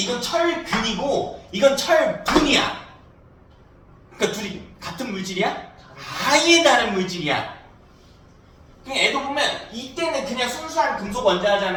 철근이고 이건 철분이야. 그러니까 둘이 같은 물질이야? 아예 다른 물질이야. 그냥 애도 보면 이때는 그냥 순수한 금속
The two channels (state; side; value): identical; both; correlation 1.00